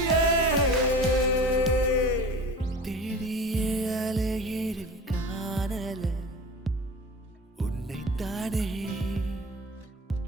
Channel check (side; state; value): both; normal; correlation 0.37